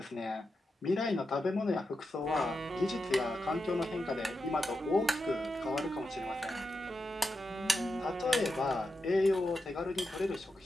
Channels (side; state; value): both; normal; correlation 0.88